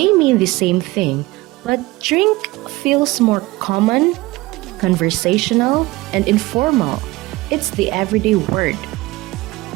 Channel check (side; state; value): left; quieter; 20.4 dB